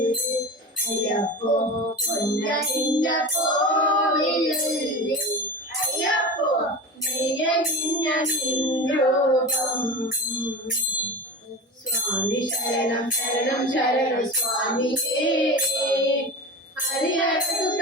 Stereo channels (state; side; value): normal; both; correlation 0.29